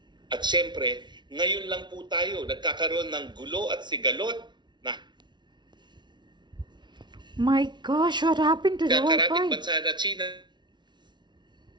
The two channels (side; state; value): left; late; 0.21 ms